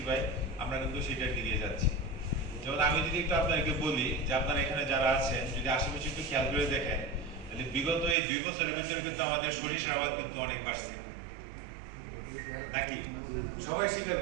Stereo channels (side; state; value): left; drops out; at 8.2 s